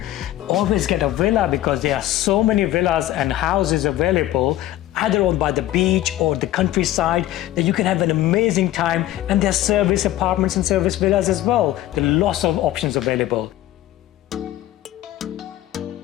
always get a villa because there are so many villas and houses available either on by the beach or the countryside that you can have an amazing time, and there's service apartments and service villas as well. There are lots of options available.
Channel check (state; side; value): quieter; right; 14.4 dB